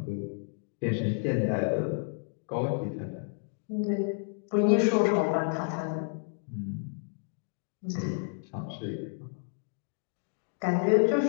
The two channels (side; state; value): right; silent; 57 dB below the other